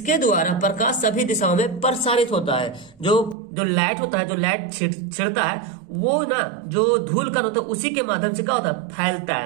द्वारा प्रकाश सभी दिशाओं में प्रसारित होता है। जो लाइट होता है, जो लाइट छिड़ता है वो ना, जो धूल कण होता है उसी के माध्यम से क्या होता है, फैलता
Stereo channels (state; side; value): drops out; left; at 3.4 s